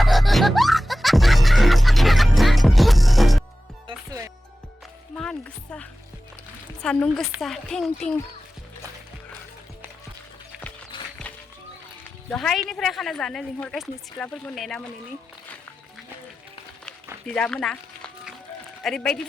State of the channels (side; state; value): both; normal; correlation 0.95